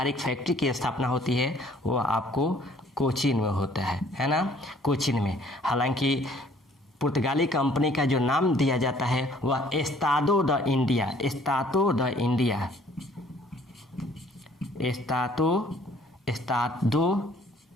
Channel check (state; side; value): normal; both; correlation 0.58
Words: फैक्ट्री की स्थापना होती है। वो आपको कोचीन में होता है ना, कोचीन में। हालांकि पुर्तगाली कंपनी का जो नाम दिया जाता है वह एस्तादो द